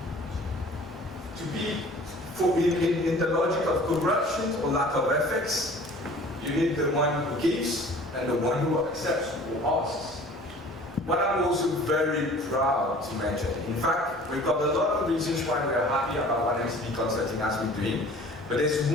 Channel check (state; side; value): normal; both; correlation 0.47